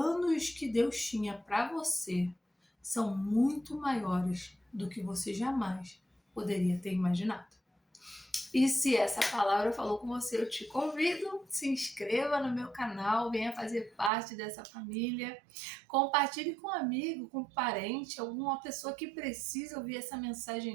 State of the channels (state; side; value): drops out; left; at 14.1 s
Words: que Deus tinha para você são muito maiores do que você jamais poderia ter imaginado. E se essa palavra falou com você, eu te convido, se inscreva no meu canal, venha fazer parte dessa família, compartilhe com um amigo, com um parente, alguma pessoa que precisa ouvir essa